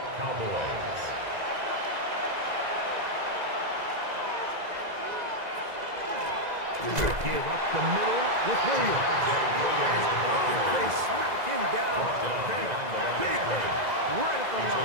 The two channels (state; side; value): late; left; 2.0 ms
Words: Cowboys. Give up the middle with Williams. They smack him down there. Big hit right at the